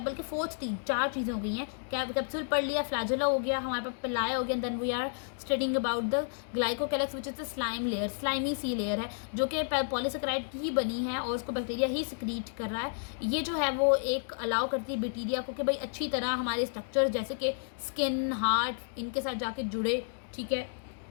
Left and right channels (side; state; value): right; silent; digital silence